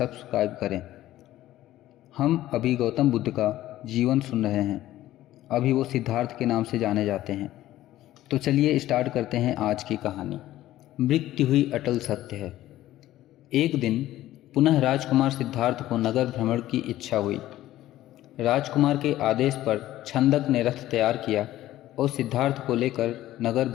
करें। हम अभी गौतम बुद्ध का जीवन सुन रहे हैं। अभी वो सिद्धार्थ के नाम से जाने जाते हैं। तो चलिए स्टार्ट करते हैं आज की कहानी। मृत्यु हुई अटल सत्य है। एक दिन पुनः राजकुमार सिद्धार्थ को नगर भ्रमण की इच्छा हुई। राजकुमार के आदेश पर छंदक ने रथ तैयार किया और सिद्धार्थ को लेकर नगर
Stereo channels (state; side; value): quieter; right; 14.5 dB